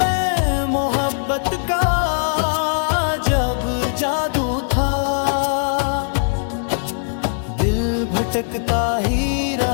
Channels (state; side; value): silent; right; digital silence